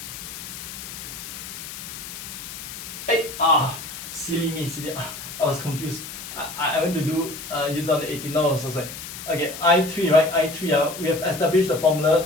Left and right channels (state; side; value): noise; left; hiss, 10 dB below the sound